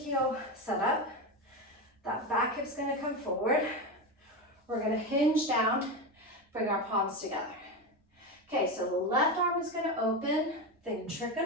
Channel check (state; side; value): normal; both; correlation 0.17